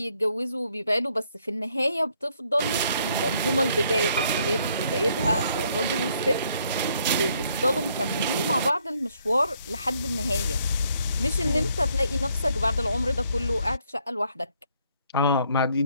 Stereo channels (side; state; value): both; inverted; correlation -0.69